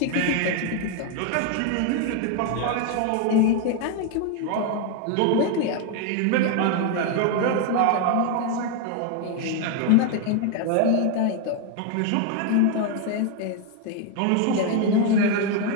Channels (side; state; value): both; different; correlation 0.01